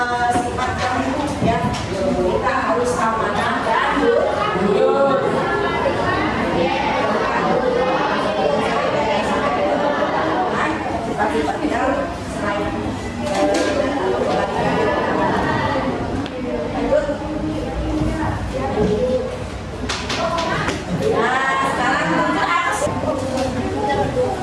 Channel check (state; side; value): identical; both; correlation 1.00